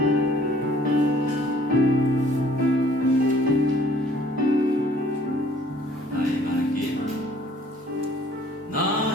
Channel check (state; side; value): normal; both; correlation 0.57